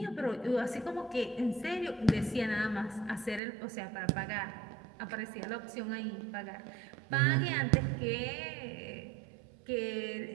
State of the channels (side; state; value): left; drops out; at 3.4 s